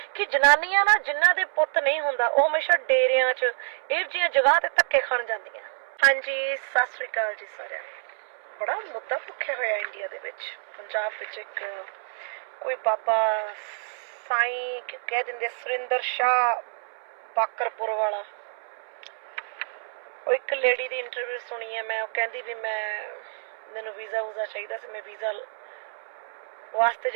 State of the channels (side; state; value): left; silent; 60 dB below the other